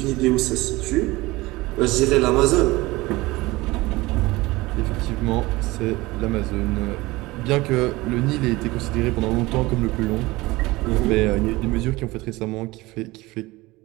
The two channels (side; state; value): left; quieter; 20.7 dB